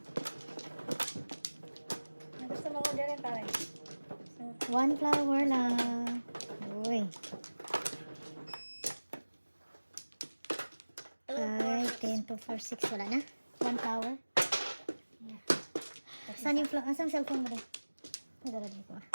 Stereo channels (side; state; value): both; inverted; correlation -1.00